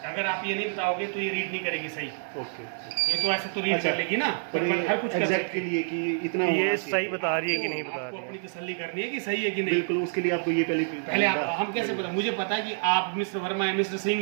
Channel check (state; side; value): silent; left; digital silence